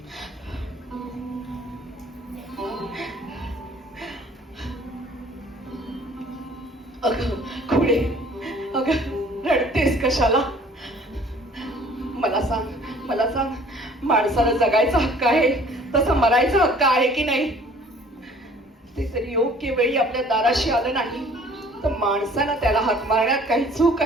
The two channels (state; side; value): normal; both; correlation 0.53